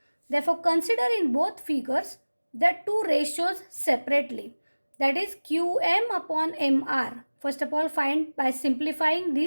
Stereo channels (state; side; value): inverted; both; correlation -1.00